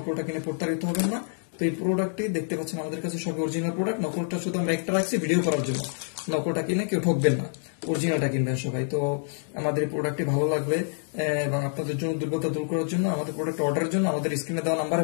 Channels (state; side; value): silent; right; 60 dB below the other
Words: কিনে প্রতারিত হবেন না। তো এই প্রোডাক্টটি দেখতে পাচ্ছেন আমাদের কাছে সব অরিজিনাল প্রোডাক্ট। নকলটা শুধু আমরা একটা রাখছি ভিডিও করার জন্য। নকলটা কিনে কেউ ঠকবেন না, অরিজিনালটা কিনবেন সবাই। তো আমাদের এই প্রোডাক্টটি ভালো লাগবে এবং আপনাদের জন্য দুর্বলতা দূর করার জন্য, আমাদের প্রোডাক্ট অর্ডারের জন্য আমাদের স্ক্রিনে দেওয়া নাম্বারে